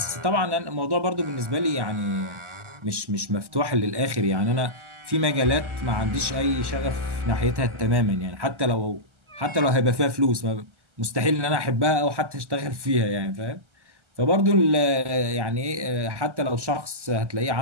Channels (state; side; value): late; left; 1.2 ms